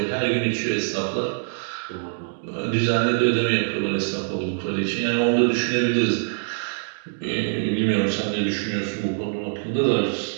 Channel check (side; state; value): left; silent; digital silence